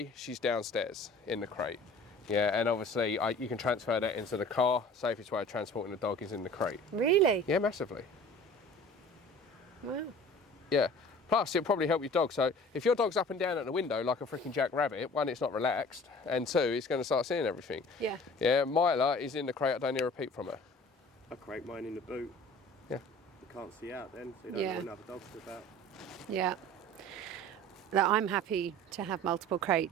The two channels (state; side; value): normal; both; correlation 0.45